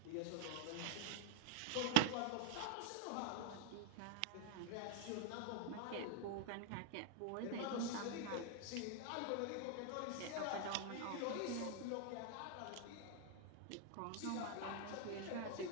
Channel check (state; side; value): different; both; correlation 0.00